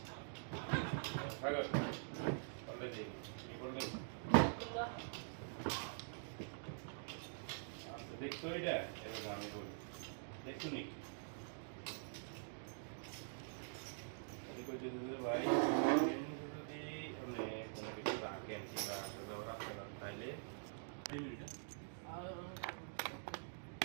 حاجة ولا دي يقول لك كلها দেখছো এটা এবার আমি বলি দেখছো নি আমি কই দিতে ভাই যদি মানে কোনো কিছু রাখেন কিংবা আসলে রাখতে না তাইলে 2 minute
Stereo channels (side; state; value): left; silent; digital silence